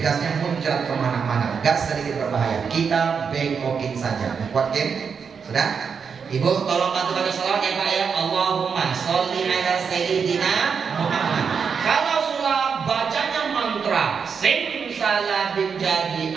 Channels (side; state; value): left; quieter; 6.2 dB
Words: muncrat kemana-mana. Gas sedikit berbahaya. Kita bengkokin saja. Kuat Kim? Sudah? Ibu tolong bantu baca salawat ya Pak ya. Allahumma sholli ala sayyidina Muhammad. Kalau sulap bacanya mantra simsalabim jadi